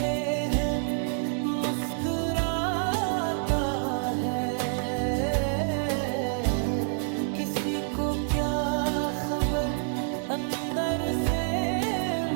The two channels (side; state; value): left; silent; digital silence